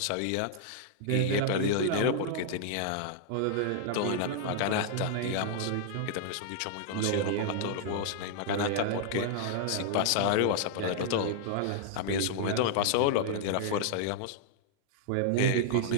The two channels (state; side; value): different; both; correlation -0.01